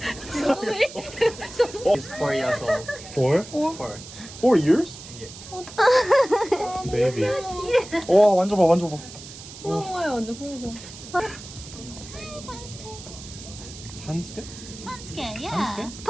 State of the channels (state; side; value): noise; right; hiss, 15 dB below the sound